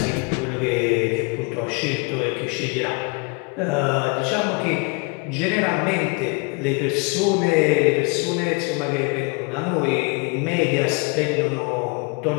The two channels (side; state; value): right; quieter; 31.5 dB